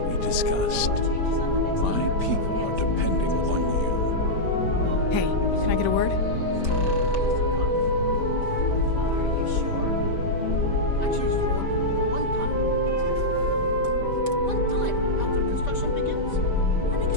we discussed. My people are depending on you. Hey, can I get a word?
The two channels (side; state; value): right; late; 5.1 ms